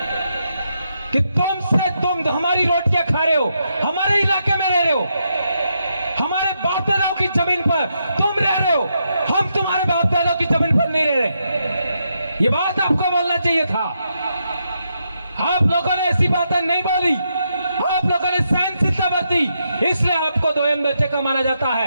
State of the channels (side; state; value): both; inverted; correlation -0.81